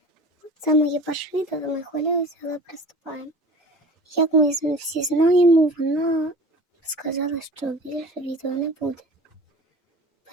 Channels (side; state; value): both; normal; correlation 0.40